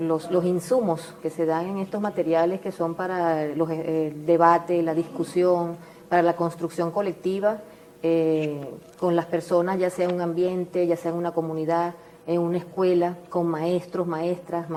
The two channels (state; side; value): identical; both; correlation 1.00